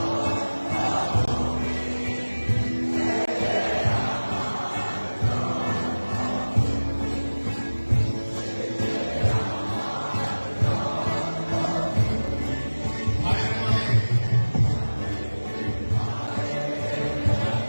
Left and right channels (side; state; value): both; inverted; correlation -1.00